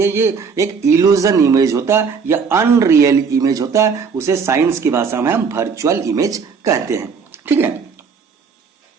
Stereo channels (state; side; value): quieter; left; 5.7 dB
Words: है ये एक इल्यूजन इमेज होता है या अनरियल इमेज होता है। उसे साइंस की भाषा में हम वर्चुअल इमेज कहते हैं। ठीक है,